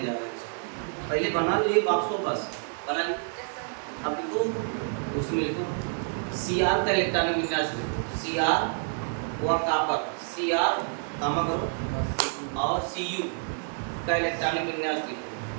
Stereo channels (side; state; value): left; silent; 59 dB below the other